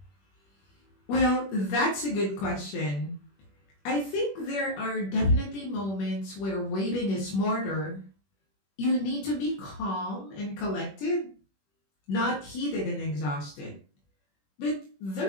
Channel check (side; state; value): right; late; 21 ms